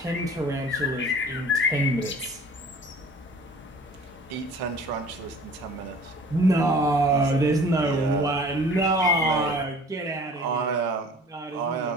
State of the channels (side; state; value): both; normal; correlation 0.47